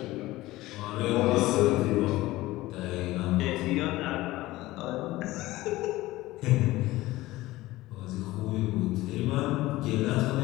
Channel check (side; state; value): right; quieter; 17.9 dB